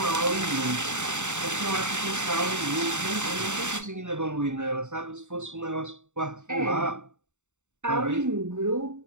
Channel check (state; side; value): late; left; 0.84 ms